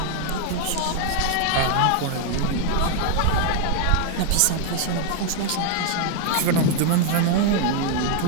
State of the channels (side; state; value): both; different; correlation 0.00